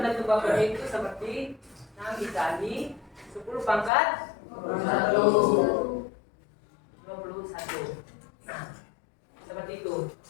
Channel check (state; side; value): drops out; right; at 3.9 s